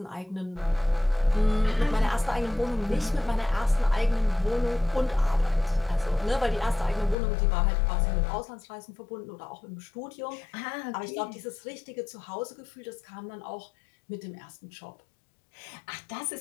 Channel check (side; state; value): right; drops out; at 7.2 s